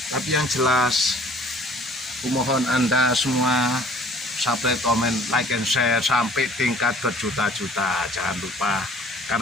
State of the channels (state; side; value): normal; both; correlation 0.52